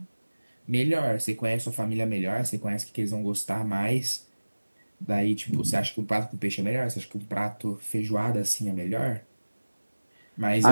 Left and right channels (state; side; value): inverted; both; correlation -1.00